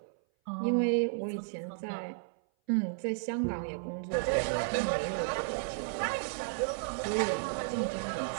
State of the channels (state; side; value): silent; left; 56 dB below the other